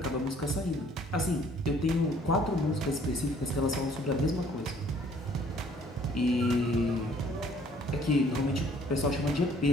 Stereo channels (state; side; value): normal; both; correlation 0.59